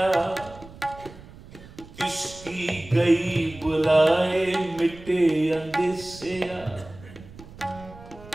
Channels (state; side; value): noise; right; rumble, 19 dB below the sound